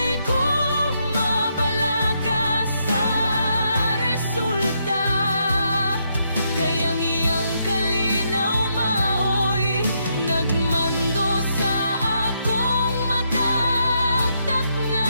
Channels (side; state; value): both; inverted; correlation -0.77